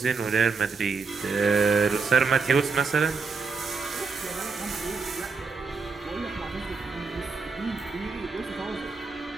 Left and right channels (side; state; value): left; quieter; 4.6 dB